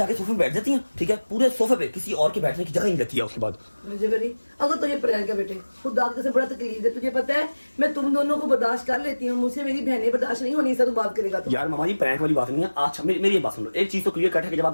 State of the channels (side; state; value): both; inverted; correlation -1.00